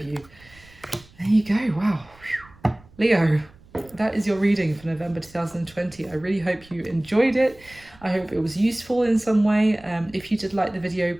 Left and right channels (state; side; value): noise; right; rumble, 26 dB below the sound